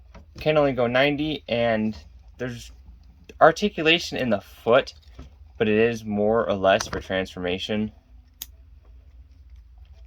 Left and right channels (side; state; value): both; identical; correlation 1.00